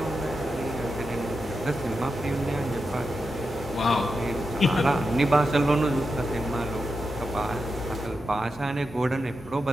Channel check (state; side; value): normal; both; correlation 0.88